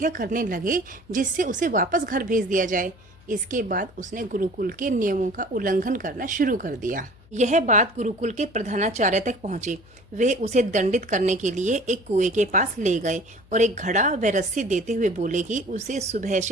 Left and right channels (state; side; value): noise; left; hum, 26 dB below the sound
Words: करने लगे, जिससे उसे वापस घर भेज दिया जाए। इसके बाद उसने गुरुकुल के नियमों का उल्लंघन करना शुरू कर दिया। यह बात गुरुकुल के प्रधानाचार्य तक पहुंची। वे उसे दंडित करने के लिए एक कुएं के पास ले गए और एक घड़ा व रस्सी देते हुए बोले कि उसे सुबह